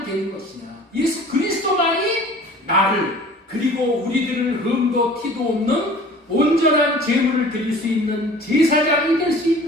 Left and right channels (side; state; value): both; normal; correlation 0.46